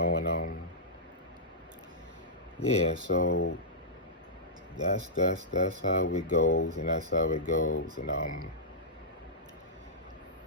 and yeah. So that's how it goes, and that's how it goes,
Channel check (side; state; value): both; normal; correlation -0.14